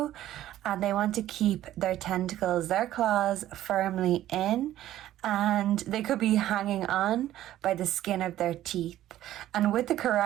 and they want to keep their tentacles, their claws firmly in, and they could be hanging on by the skin of their teeth. And with the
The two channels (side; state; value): left; quieter; 13.3 dB